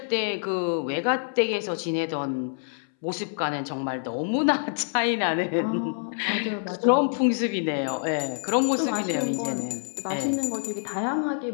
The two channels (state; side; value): silent; right; 61 dB below the other